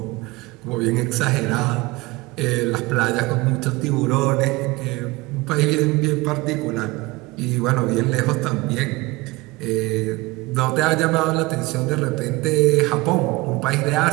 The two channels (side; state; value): left; quieter; 22.2 dB